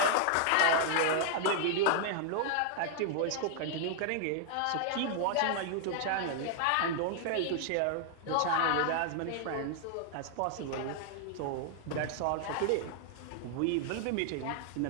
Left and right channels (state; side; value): different; both; correlation 0.00